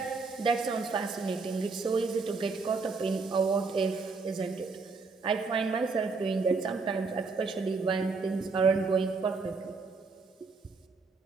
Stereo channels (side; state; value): left; quieter; 4.3 dB